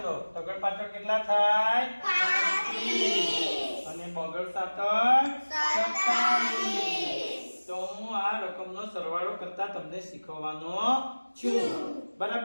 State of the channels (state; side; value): inverted; both; correlation -1.00